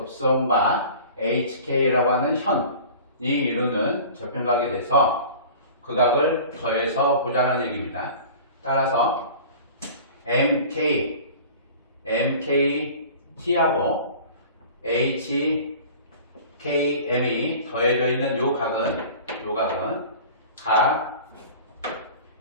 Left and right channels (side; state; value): both; inverted; correlation -0.42